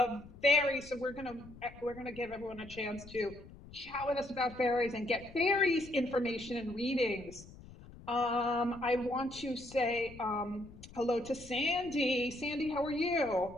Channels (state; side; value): noise; left; rumble, 18 dB below the sound